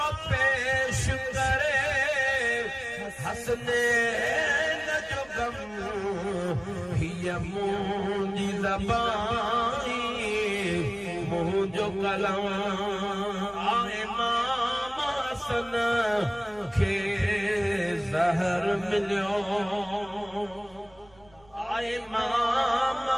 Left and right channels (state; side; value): noise; right; rumble, 28 dB below the sound